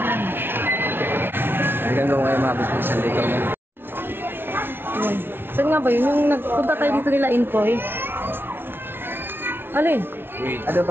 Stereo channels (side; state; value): left; late; 0.11 ms